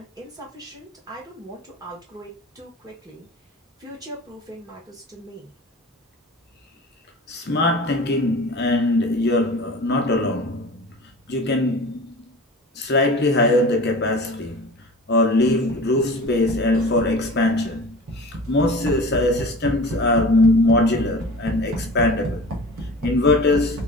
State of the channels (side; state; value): both; normal; correlation 0.38